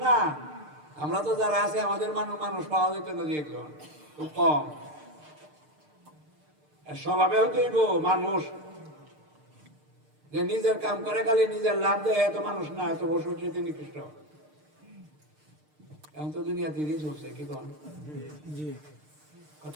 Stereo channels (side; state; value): left; late; 6.6 ms